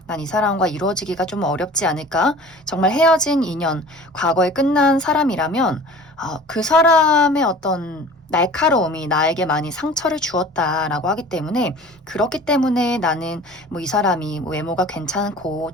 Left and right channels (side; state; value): both; normal; correlation 0.43